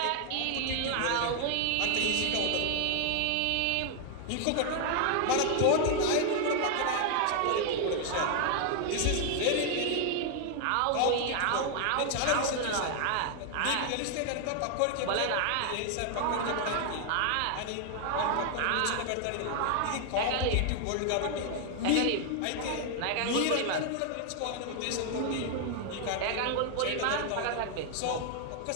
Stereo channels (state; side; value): different; both; correlation 0.00